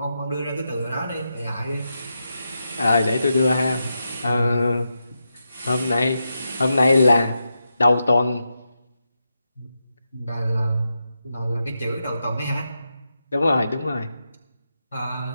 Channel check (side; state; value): both; inverted; correlation -0.87